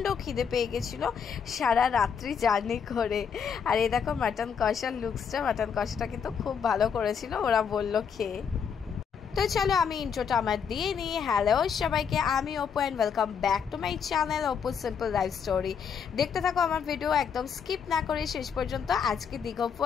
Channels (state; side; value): quieter; right; 6.9 dB